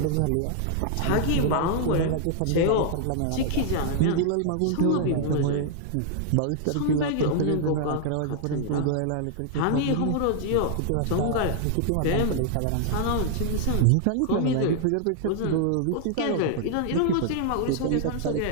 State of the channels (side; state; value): both; different; correlation 0.00